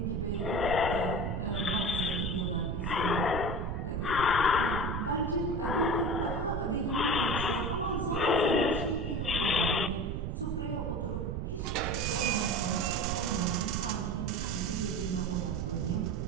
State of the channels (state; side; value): noise; right; rumble, 2 dB below the sound